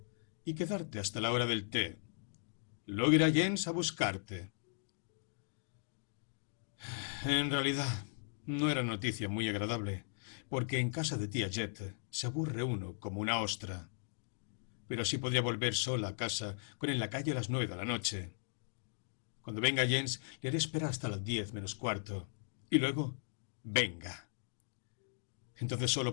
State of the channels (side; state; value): right; silent; digital silence